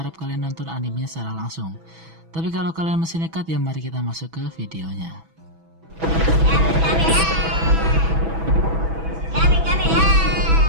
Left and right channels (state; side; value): late; left; 6.1 ms